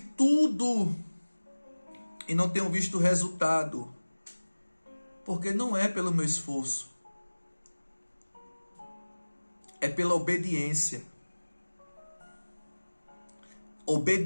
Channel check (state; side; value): inverted; both; correlation -1.00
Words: e não tenho visto resultado, porque não é pelo meu esforço, é pela obediência.